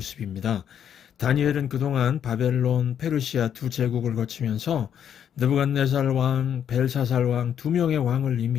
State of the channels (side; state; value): right; quieter; 8.9 dB